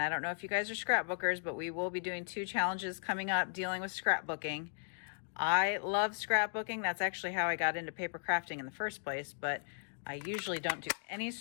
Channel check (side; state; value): right; silent; digital silence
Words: I don't know if you guys are scrapbookers, but we will be doing 2 challenges coming up dealing with scrapbooking. I love scrapbooking. That's actually how I got into paper crafting in the first place, but I usually don't do any